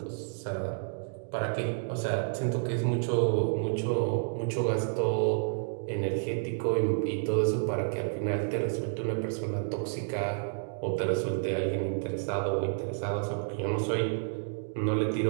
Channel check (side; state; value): left; silent; digital silence